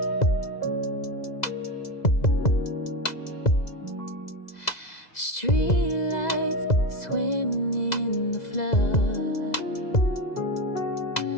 Streetlights swim in the flood,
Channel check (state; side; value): late; right; 2.0 ms